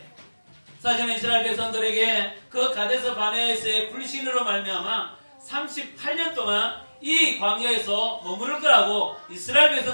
사실은 이스라엘 백성들에게 그 가데스 바네아에서의 불신으로 말미암아 38년 동안 이 광야에서 머무를 거라고 이스라엘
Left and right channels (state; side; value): inverted; both; correlation -1.00